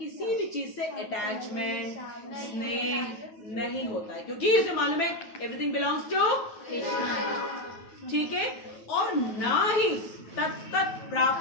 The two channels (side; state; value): right; late; 9.1 ms